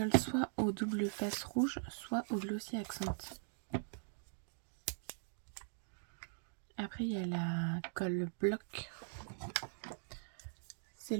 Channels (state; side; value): silent; left; digital silence